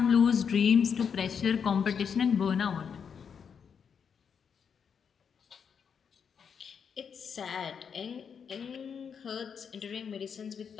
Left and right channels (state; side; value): quieter; right; 6.9 dB